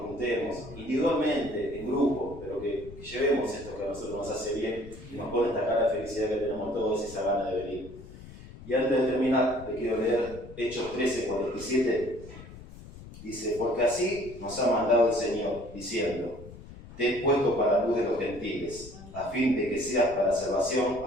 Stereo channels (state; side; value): noise; left; rumble, 16 dB below the sound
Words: juntemos, individualmente, en grupo, pero que llevemos esto que a nosotros nos hace bien y nos pone esta cara de felicidad que tenemos todos y esa gana de venir. Y antes de terminar, le quiero leer Hechos 13:47. Dice, porque así nos ha mandado el Señor, diciendo, te he puesto para luz de los gentiles, a fin de que seas para salvación